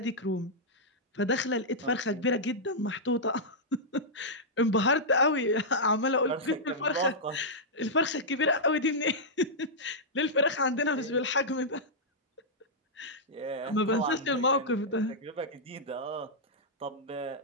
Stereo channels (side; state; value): both; normal; correlation -0.09